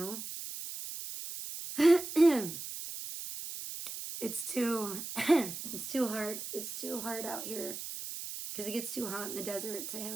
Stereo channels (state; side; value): noise; right; hiss, 8 dB below the sound